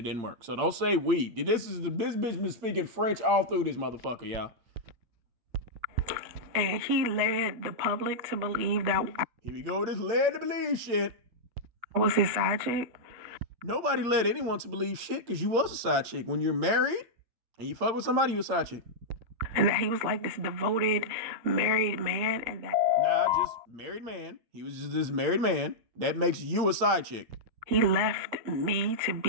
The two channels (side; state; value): left; late; 8.7 ms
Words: didn't work. So don't say we. This bitch been speaking French all through this motherfucker, y'all. And he led the public to believe that. Here we go with this led to believe shit. I was his side chick. Nobody led anyone to believe shit because you was a side chick. When you're married and you fuck with somebody, you're a side chick. And that he was like this devoted married man, and that. Nah, just married man. He was just this married man. That makes you a side chick. He left me to